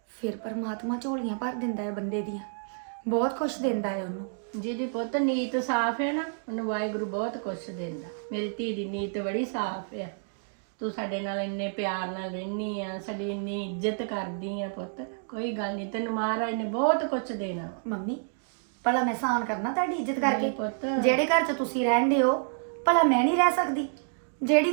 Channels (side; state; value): left; silent; digital silence